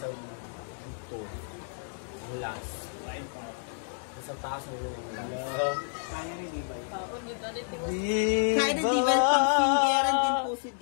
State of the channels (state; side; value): silent; right; digital silence